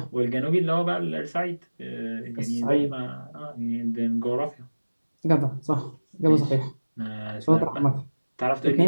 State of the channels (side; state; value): both; inverted; correlation -1.00